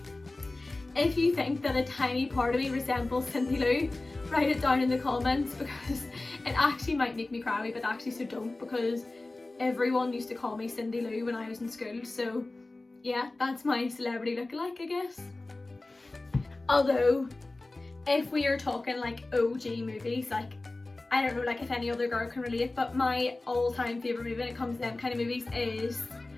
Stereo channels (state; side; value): quieter; right; 3.0 dB